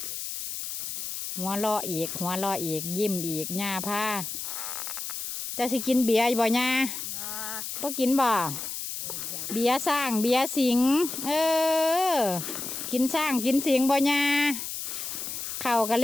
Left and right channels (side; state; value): left; noise; hiss, 6 dB below the sound